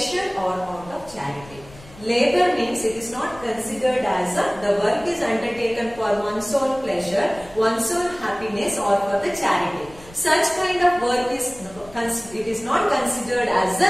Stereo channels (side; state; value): left; noise; rumble, 22 dB below the sound